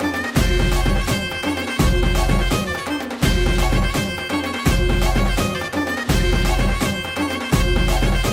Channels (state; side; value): identical; both; correlation 1.00